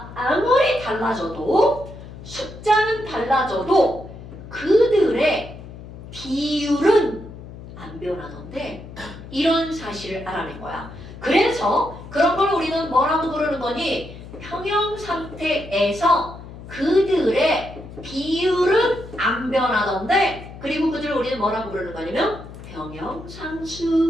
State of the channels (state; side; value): noise; left; hum, 14 dB below the sound